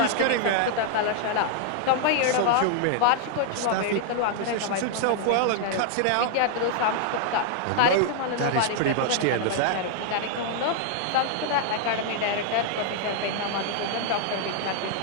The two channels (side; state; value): both; different; correlation 0.00